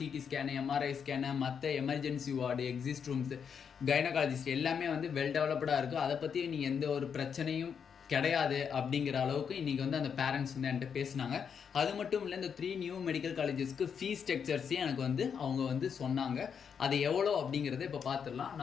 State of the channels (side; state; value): right; quieter; 7.0 dB